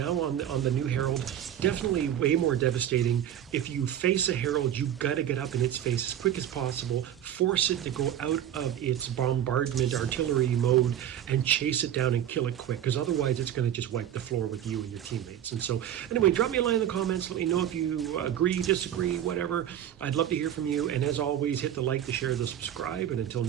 on the new Herald. Definitely way more devastating. If you face a Herald, you got to get up in its face as quick as possible, force it to go out of its bombardment artillery mode and chase it down and kill it quick, because otherwise it's going to just wipe the floor with you and your teammates. And so anyway, drop me a line in the comments, let me know if you agree, disagree, whatever. I'd love to hear from you, and as always, hit the like, the share, the subscribe, and until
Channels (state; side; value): quieter; left; 10.6 dB